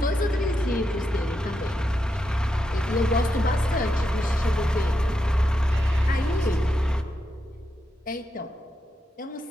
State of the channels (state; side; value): normal; both; correlation 0.85